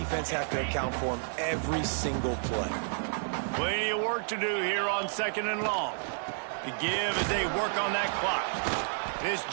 have to account for him every single play. Plenty of work to do here on 2nd and long. The give as they work on that clock. This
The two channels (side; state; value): left; silent; digital silence